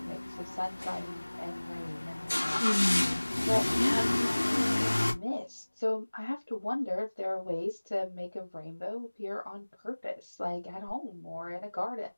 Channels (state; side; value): inverted; both; correlation -1.00